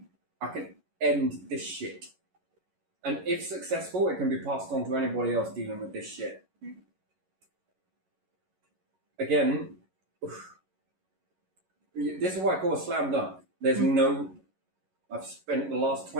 I can end this shit. And if successful, it can be passed on to anybody else dealing with this shit. again, this is what I call a slam dunk. There's no... I've spent the last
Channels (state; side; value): late; left; 11 ms